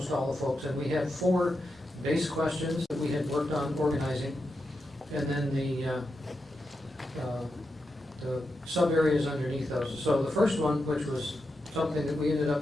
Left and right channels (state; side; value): normal; both; correlation 0.87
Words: all the folks. And we had 4 base questions that we had worked on organizing, and then the sub areas underneath those. So the first one, which was something that we ended